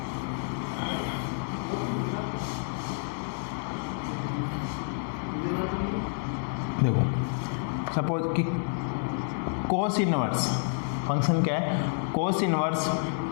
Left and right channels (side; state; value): right; silent; digital silence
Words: सपोज कि कोस इनवर्स फंक्शन क्या है, कोस इनवर्स